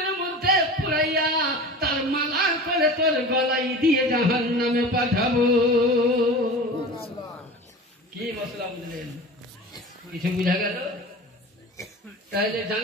মধ্যে পুরাইয়া তার মালা করে তোর গলায় দিয়ে জাহান্নামে পাঠাবো। কি মশলা বুঝলেন? কিছু বুঝা গেল? তাহলে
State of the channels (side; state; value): both; normal; correlation 0.35